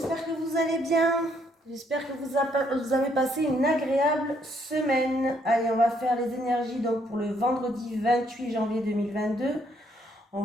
que vous allez bien. J'espère que vous avez passé une agréable semaine. Allez, on va faire les énergies donc pour le vendredi 28 janvier 2022. On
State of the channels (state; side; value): normal; both; correlation 0.70